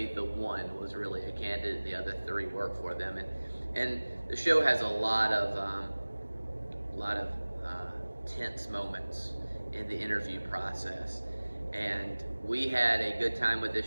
the one was really a candidate, the other 3 work for them. And the show has a lot of tense moments in the interview process. And we had a good time with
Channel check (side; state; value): both; inverted; correlation -1.00